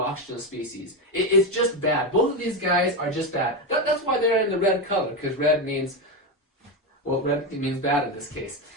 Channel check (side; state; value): both; normal; correlation 0.12